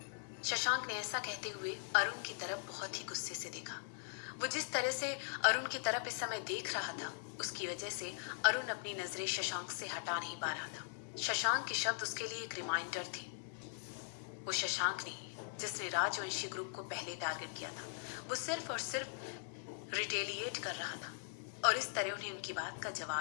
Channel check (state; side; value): silent; right; 51 dB below the other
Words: शशांक ने ऐसा कहते हुए अरुण की तरफ बहुत ही गुस्से से देखा। वो जिस तरह से अरुण की तरफ इस समय देख रहा था, उसकी वजह से अरुण अपनी नजरें शशांक से हटा नहीं पा रहा था। शशांक के शब्द उसके लिए एक रिमाइंडर थे। वो शशांक नहीं जिसने राजवंशी ग्रुप को पहले टारगेट किया था। वो सिर्फ और सिर्फ रिटेलिएट कर रहा था और इस तरह उन्हें उनकी बात का